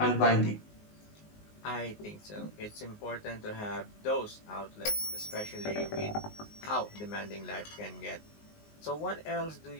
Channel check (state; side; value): late; right; 19 ms